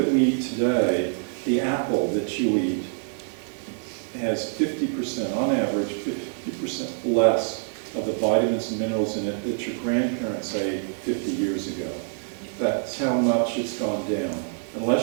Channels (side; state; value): left; silent; digital silence